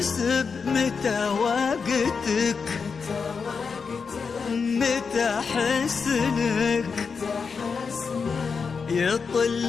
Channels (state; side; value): quieter; right; 5.4 dB